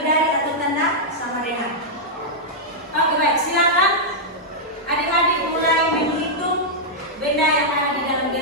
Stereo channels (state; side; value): normal; both; correlation -0.07